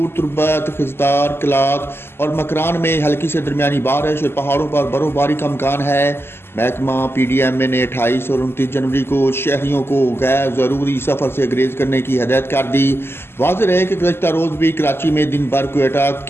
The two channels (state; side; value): late; right; 0.12 ms